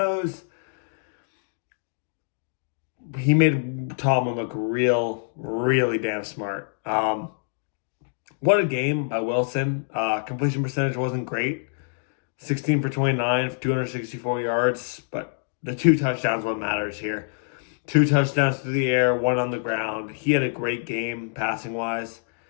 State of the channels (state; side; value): silent; right; digital silence